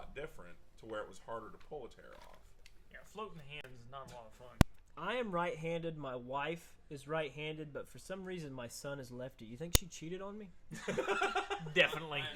different, to where it was harder to pull a tear off. Yeah, floating hands is not a lot of fun. I am right-handed. My wife is right-handed, but for some reason my son is lefty. You think she cheated on me? Definitely. I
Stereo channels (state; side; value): identical; both; correlation 1.00